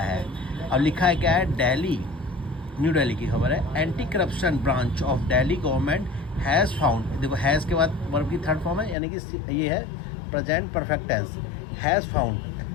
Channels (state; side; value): drops out; right; at 9.0 s